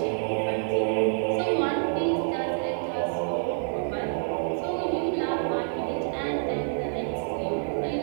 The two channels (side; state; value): left; silent; 60 dB below the other